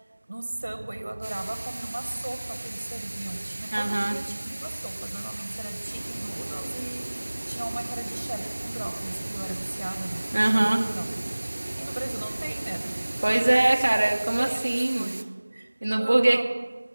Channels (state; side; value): inverted; both; correlation -1.00